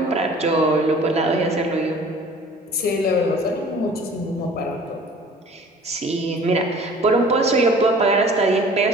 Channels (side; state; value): both; normal; correlation 0.48